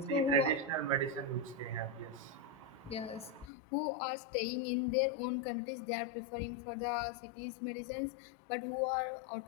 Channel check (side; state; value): right; drops out; at 3.5 s